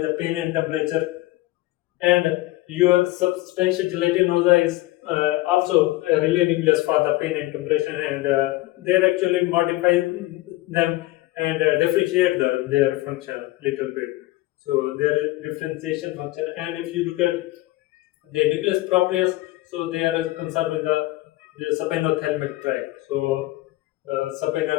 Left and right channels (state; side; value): quieter; right; 18.5 dB